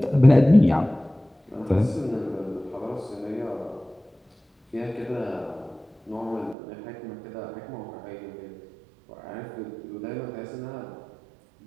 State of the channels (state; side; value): drops out; left; at 6.6 s